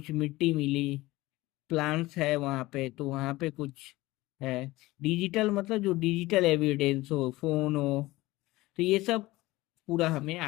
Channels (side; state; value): right; quieter; 19.1 dB